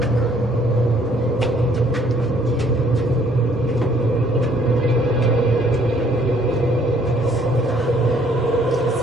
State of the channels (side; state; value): both; normal; correlation 0.62